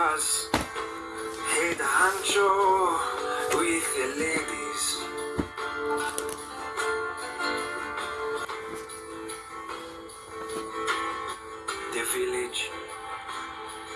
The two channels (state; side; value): identical; both; correlation 1.00